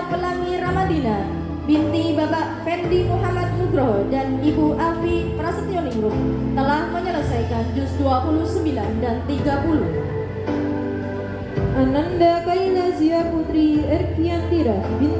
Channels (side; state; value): both; identical; correlation 1.00